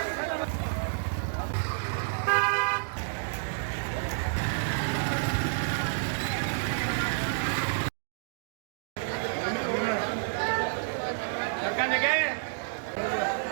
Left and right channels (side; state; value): left; silent; digital silence